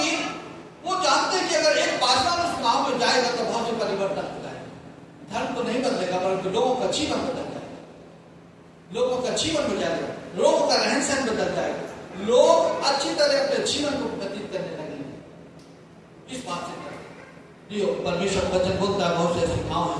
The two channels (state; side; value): identical; both; correlation 1.00